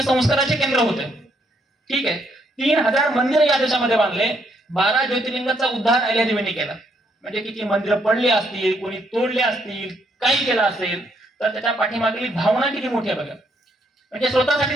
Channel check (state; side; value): normal; both; correlation 0.72